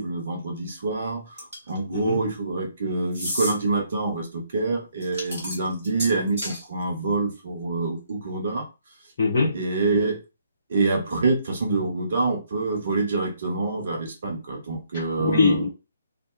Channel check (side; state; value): both; inverted; correlation -0.70